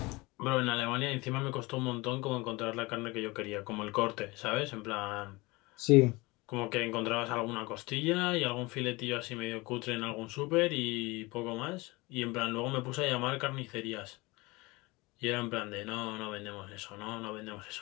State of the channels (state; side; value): quieter; right; 23.4 dB